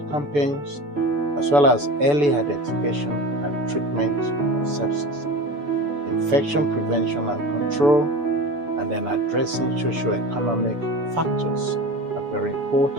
campaigns, as well as early identification and treatment of sepsis, infection prevention and control, and then addressing socio-economic factors are very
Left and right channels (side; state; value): left; late; 6.9 ms